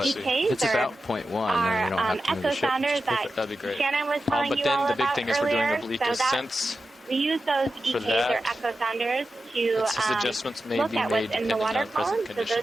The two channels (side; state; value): both; normal; correlation 0.92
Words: EKs, it's or about 0.1, then we don't our have to move echo the ship. sounders that That'd be great. Shannon was telling But you then all the big about thing is we're doing earlier. oblique So ascents. we use those For EKs that, or echo sounders to It's just adjustments may look be at made what's in the depending water on present column. So